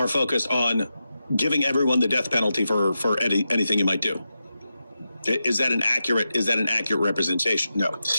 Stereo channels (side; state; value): both; inverted; correlation -0.90